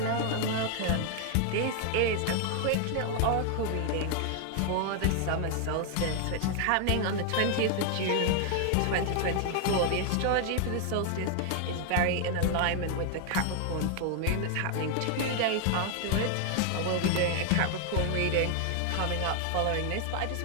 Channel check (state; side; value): different; both; correlation 0.00